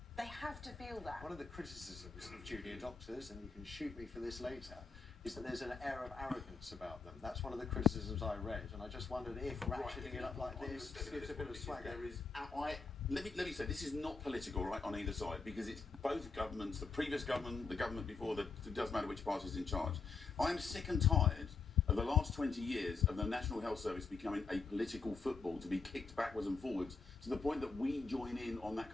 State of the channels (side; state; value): right; quieter; 4.6 dB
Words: They have to feel that. One of the criticisms of junior doctors, and you can shoot me for this later, is that there's an air of arrogance about them. That's one of the criticisms I read, and I just wondered if ratcheting it up like this gives a bit of swagger. Let me say, this is not political, right, on either side, because it's both governments, the previous government, the government before, it doesn't matter which party's in charge. I'm sick and tired of the last 20 years of the National Health Service becoming a political football to be kicked backwards and forwards to the point that we join in on that